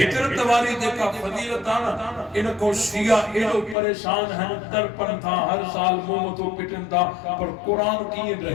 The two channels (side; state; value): right; drops out; at 3.8 s